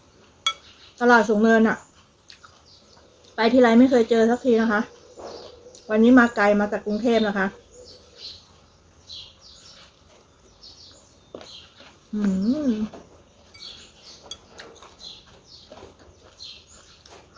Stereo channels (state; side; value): identical; both; correlation 1.00